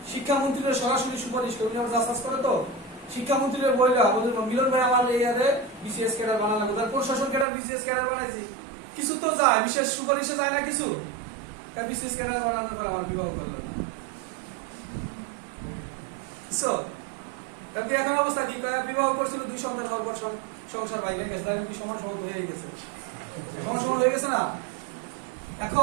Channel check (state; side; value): drops out; left; at 7.5 s